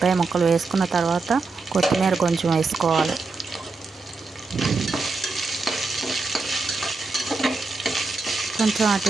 ముక్కలు వేసుకున్న తర్వాత కొత్తిమీర కొంచెం వేసుకోవాలి. కొంచెం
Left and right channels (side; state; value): left; quieter; 3.9 dB